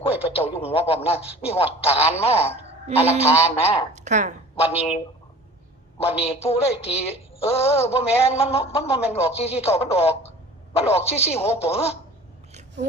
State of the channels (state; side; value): normal; both; correlation 0.44